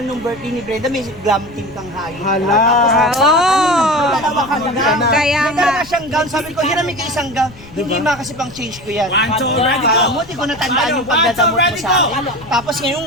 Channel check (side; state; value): left; noise; rumble, 20 dB below the sound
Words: nung birthday ni Brenda, may glam team kang hayo. Hala. May dalawa kang gown. Kaya May dalawa siyang gown. Sabi ko, hiramin ka isang gown. Hindi kasi pang change ko yan. 1, 2, ready, go! Alam mo, di ko natandaan yung pagdadamot mo sa akin. Tapos ngayon,